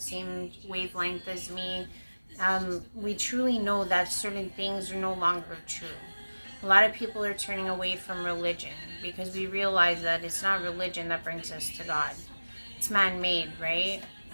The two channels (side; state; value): both; inverted; correlation -1.00